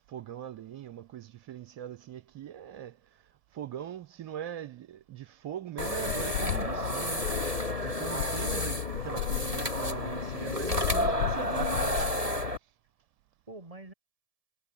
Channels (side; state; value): left; late; 1.7 ms